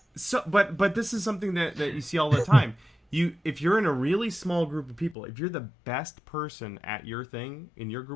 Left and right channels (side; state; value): right; drops out; at 5.2 s